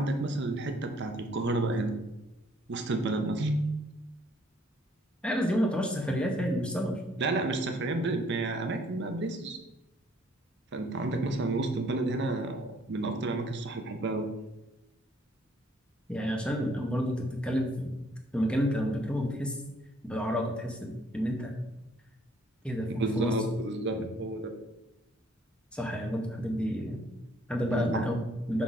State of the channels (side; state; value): both; normal; correlation 0.64